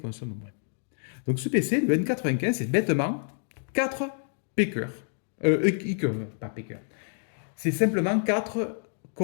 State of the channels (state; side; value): silent; right; digital silence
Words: moins. Donc ce PC, le N95, c'est bêtement 4 P-cœurs. Pas P-cœurs. C'est simplement 4